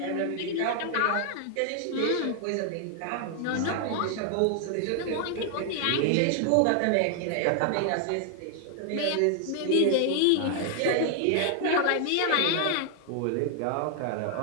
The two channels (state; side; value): different; both; correlation 0.00